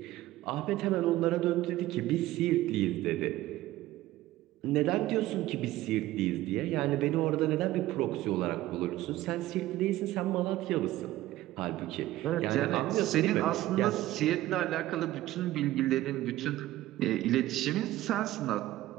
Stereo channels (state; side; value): quieter; left; 15.8 dB